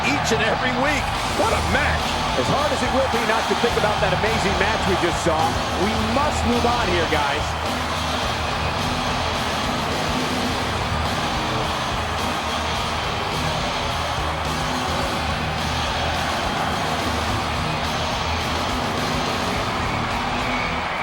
each and every week. What a match. As hard as it will be not to think about that amazing match we just saw, we must move on here, guys.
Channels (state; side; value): identical; both; correlation 1.00